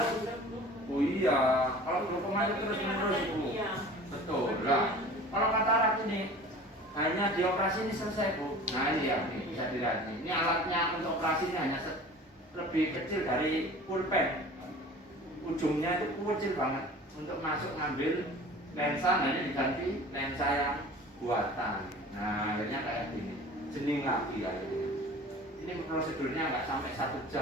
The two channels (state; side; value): normal; both; correlation 0.42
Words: oh iya, kalau glaukoma itu terus-menerus Bu, betul lah. Kalau katarak ini hanya dioperasi ini selesai Bu. Nah ini ya, ini bisa dilihat ini alatnya untuk operasi ini hanya lebih kecil dari pulpen, ujungnya itu kecil banget. Untuk masuk ngambil lensa hanya diganti lensa yang buatan. Nah akhirnya kayak gini, jening lagi ya. Ini prosedurnya nggak sampai 1